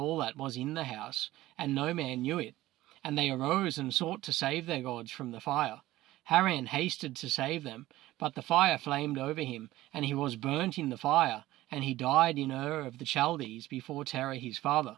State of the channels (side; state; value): left; quieter; 16.3 dB